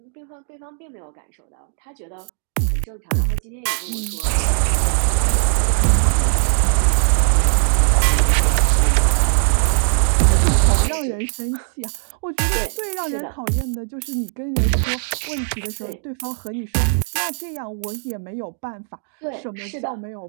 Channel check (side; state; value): left; silent; 63 dB below the other